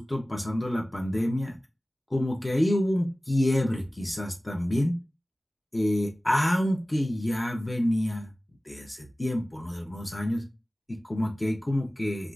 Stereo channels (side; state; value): both; normal; correlation 0.97